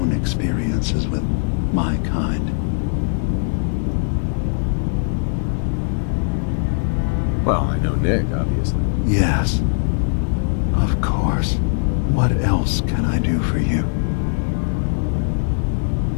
experiences with my kind. Well, I know Nick, obviously. Yes. Of course. What else can I do for you?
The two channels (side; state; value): right; silent; digital silence